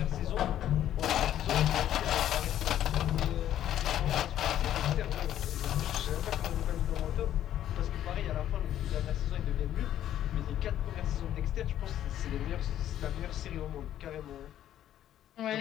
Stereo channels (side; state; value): right; quieter; 11.5 dB